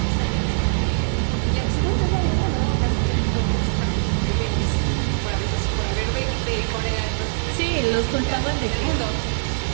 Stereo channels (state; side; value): silent; left; 56 dB below the other